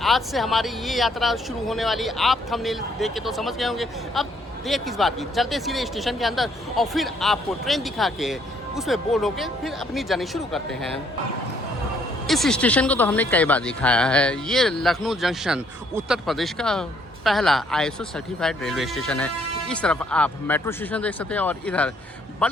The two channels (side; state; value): both; normal; correlation 0.67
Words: से हमारी ये यात्रा शुरू होने वाली। आप थंबनेल देख के तो समझ गए होंगे। अब देर किस बात की, चलते सीधे स्टेशन के अंदर और फिर आपको ट्रेन दिखा के उसमें बोर्ड होके फिर अपनी जर्नी शुरू करते हैं। इस स्टेशन को तो हमने कई बार दिखाया है। ये लखनऊ जंक्शन उत्तर प्रदेश का पहला ISO सर्टिफाइड रेलवे स्टेशन है। इस तरफ आप मेट्रो स्टेशन देख सकते हैं और इधर